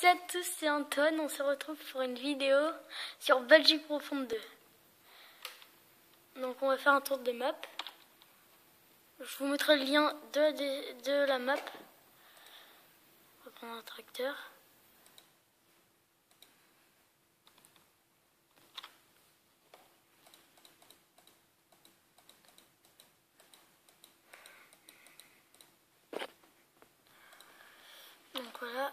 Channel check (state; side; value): identical; both; correlation 1.00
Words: et à tous, c'est Antoine. On se retrouve pour une vidéo sur Belgique Profonde 2. Donc on va faire un tour de map. Je vous mettrai le lien de la map. On va prendre un tracteur. Donc voilà,